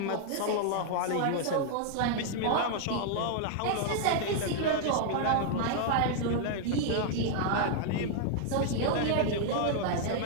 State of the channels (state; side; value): different; both; correlation 0.00